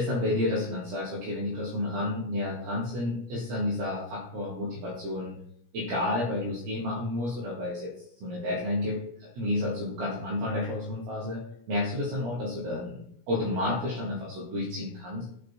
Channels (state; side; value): late; left; 17 ms